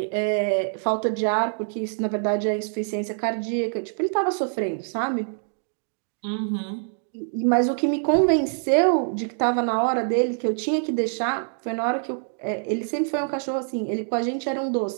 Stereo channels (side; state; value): left; silent; digital silence